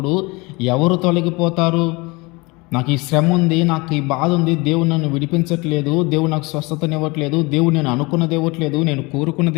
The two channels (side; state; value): right; quieter; 25.3 dB